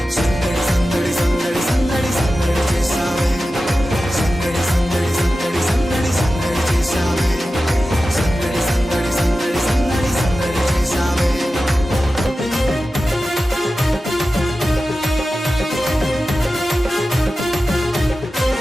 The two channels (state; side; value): normal; both; correlation 0.94